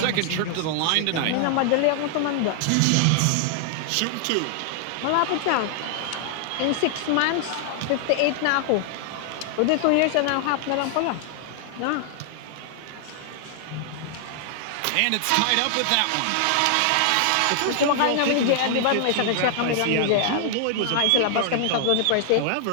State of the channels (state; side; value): different; both; correlation -0.01